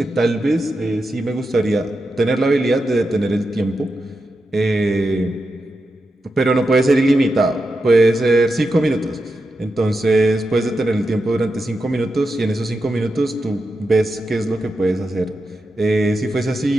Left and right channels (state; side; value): normal; both; correlation 0.88